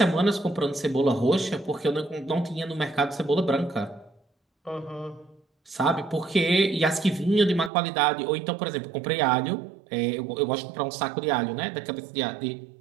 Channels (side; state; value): left; drops out; at 7.7 s